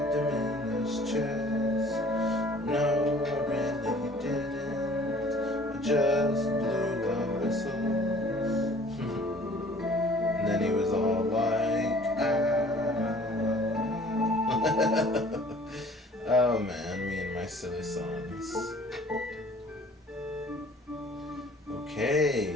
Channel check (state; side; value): normal; both; correlation 0.52